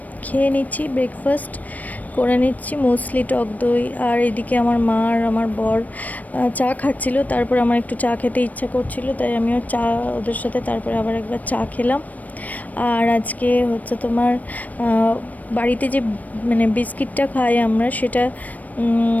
খেয়ে নিচ্ছি, ব্রেকফাস্ট করে নিচ্ছি, মুসলি, টক দই। আর এদিকে আমার মা আর আমার বর চা খাচ্ছিল। তারপর আমার একটু চা খেতে ইচ্ছা করছিল, তাই আমিও চা ওদের সাথে তারপরে আবার একবার চা খেলাম। আর আজকে হচ্ছে তোমার বাড়িতে যে বিস্কিটটা খাই আমরা, সেটা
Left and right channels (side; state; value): right; late; 0.075 ms